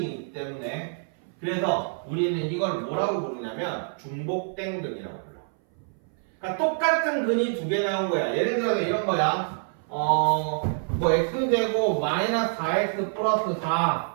때문에. 그래서 우리는 이걸 뭐라고 부르냐면 중복된 근이라고 불러. 그러니까 똑같은 근이 두 개 나온 거야. 예를 들어서 이런 거야. 뭐 x제곱 마이너스 4x 플러스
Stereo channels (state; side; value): silent; left; 58 dB below the other